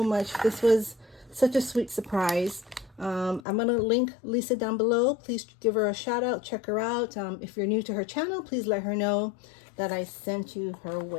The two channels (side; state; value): right; drops out; at 3.4 s